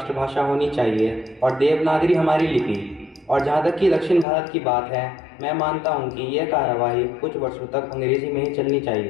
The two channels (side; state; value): right; drops out; at 4.2 s